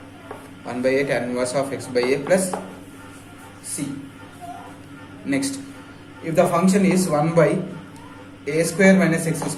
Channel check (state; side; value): identical; both; correlation 1.00